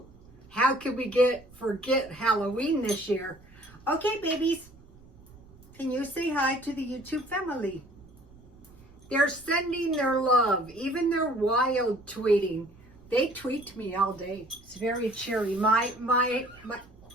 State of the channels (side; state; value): right; noise; rumble, 24 dB below the sound